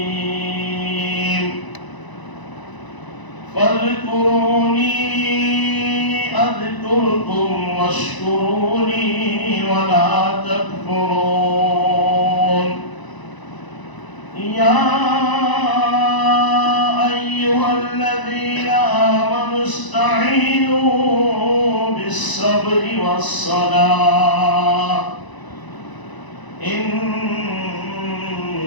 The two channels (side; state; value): right; late; 1.0 ms